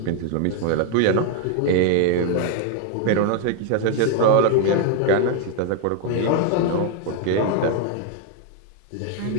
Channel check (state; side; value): different; both; correlation 0.01